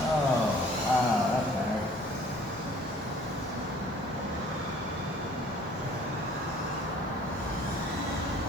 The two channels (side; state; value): both; normal; correlation 0.53